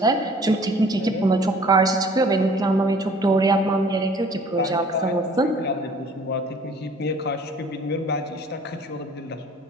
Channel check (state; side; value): normal; both; correlation 0.52